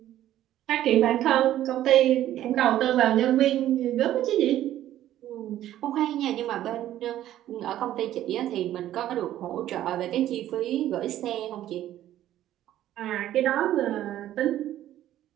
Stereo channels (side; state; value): left; quieter; 12.8 dB